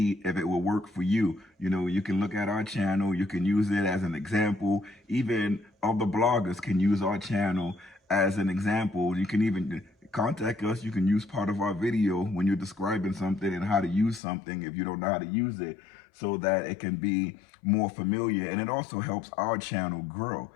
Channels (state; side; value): drops out; right; at 14.2 s